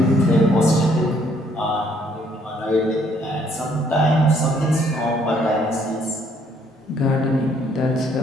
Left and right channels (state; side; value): normal; both; correlation 0.66